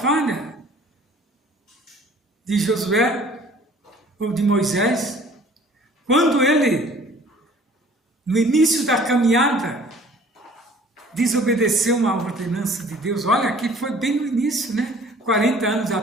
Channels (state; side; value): normal; both; correlation 0.52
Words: de Josué, ou de Moisés, quando ele, no início da caminhada, desobedeceu uma ordenança de Deus. Olha, aqui foi bem no início, né? 40 anos